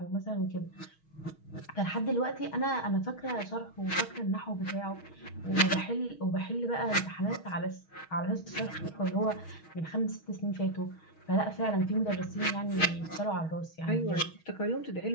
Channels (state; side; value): late; right; 6.3 ms